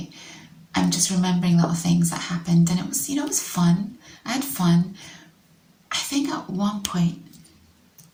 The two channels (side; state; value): both; identical; correlation 1.00